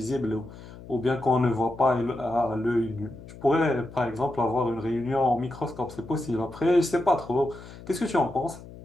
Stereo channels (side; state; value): left; noise; hum, 16 dB below the sound